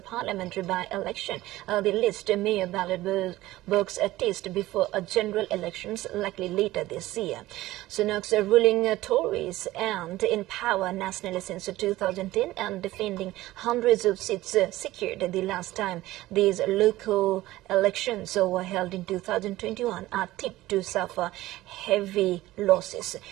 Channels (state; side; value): quieter; left; 16.9 dB